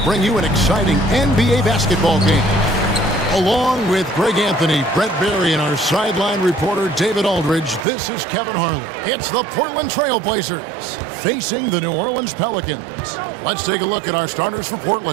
bring you an exciting NBA basketball game. Along with Greg Anthony, Brett Barry, and our sideline reporter David Aldridge, this is Kevin Harlan. It's the Portland Trailblazers facing the New Orleans Pelicans. Let's take a look at our starters for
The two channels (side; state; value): left; drops out; at 7.9 s